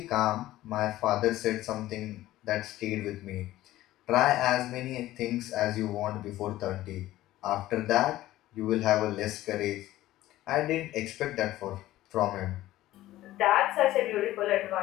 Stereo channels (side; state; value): right; quieter; 15.4 dB